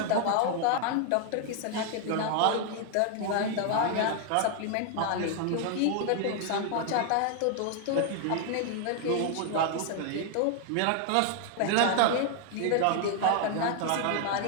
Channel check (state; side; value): different; both; correlation 0.00